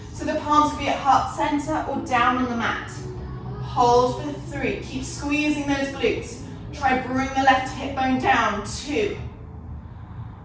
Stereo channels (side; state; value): both; identical; correlation 1.00